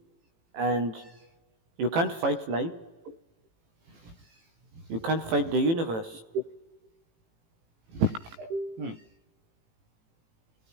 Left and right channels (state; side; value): late; left; 18 ms